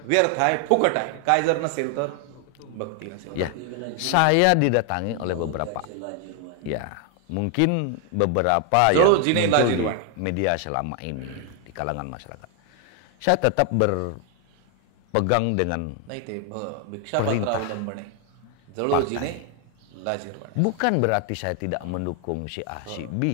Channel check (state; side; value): different; both; correlation 0.00